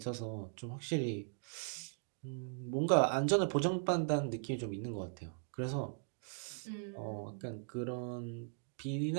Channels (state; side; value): silent; left; digital silence